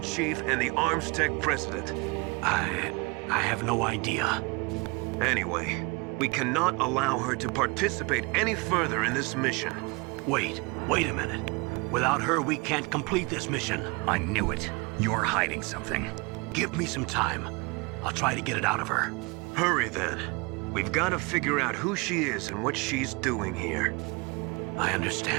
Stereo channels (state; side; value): quieter; left; 27.8 dB